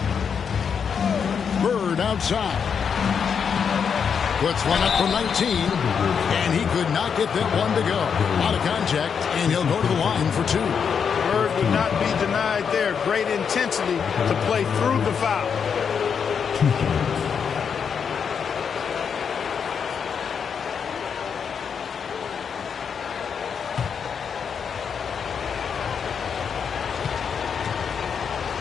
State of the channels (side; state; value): right; quieter; 6.8 dB